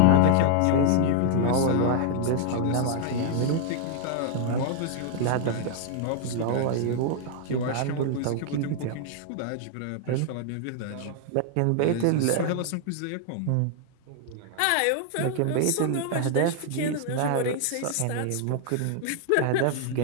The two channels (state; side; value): different; both; correlation -0.01